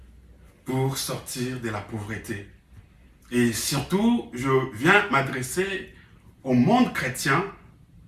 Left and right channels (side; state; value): both; identical; correlation 1.00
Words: pour sortir de la pauvreté? Et surtout, je viens m'adresser au monde chrétien.